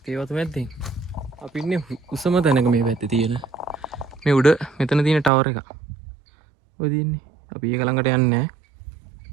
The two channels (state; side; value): drops out; left; at 5.3 s